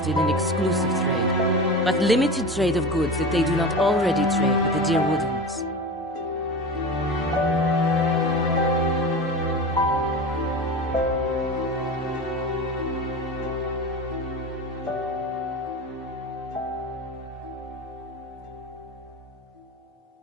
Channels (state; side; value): normal; both; correlation 0.29